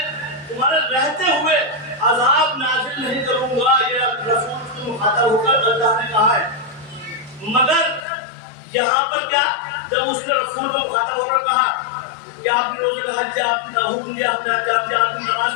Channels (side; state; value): right; drops out; at 8.1 s